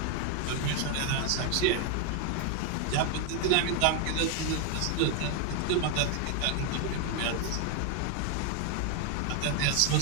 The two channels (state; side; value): different; both; correlation 0.01